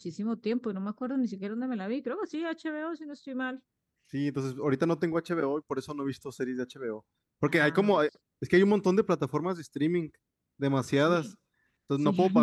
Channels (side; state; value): both; identical; correlation 1.00